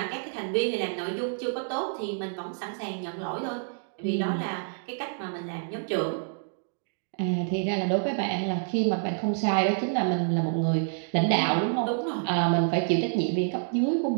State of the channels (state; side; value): silent; left; digital silence